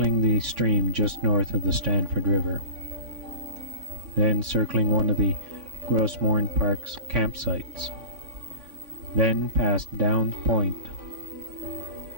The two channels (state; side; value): late; left; 3.5 ms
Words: the stream just north of the Stanford River, then circling one of the Gros Morne Park's campsites, then past Downs Point